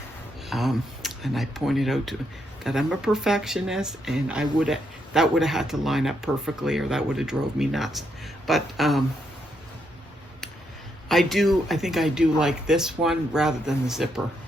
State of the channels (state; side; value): normal; both; correlation 0.78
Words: And I pointed out that I'm a perfectionist, and that would have had to line up perfectly, or that would have drove me nuts. But I think I do like this one rather than the zipper.